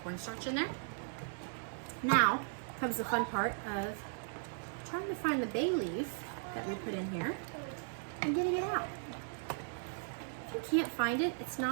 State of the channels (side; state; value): left; silent; digital silence